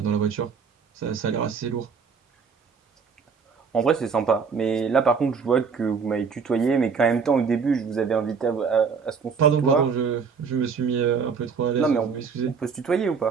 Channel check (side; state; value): left; quieter; 5.8 dB